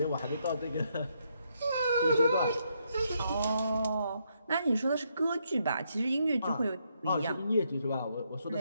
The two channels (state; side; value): inverted; both; correlation -0.77